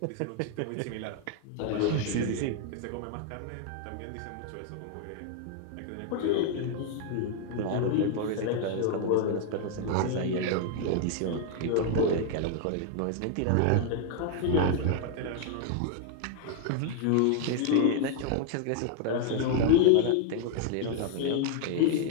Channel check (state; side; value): different; both; correlation 0.00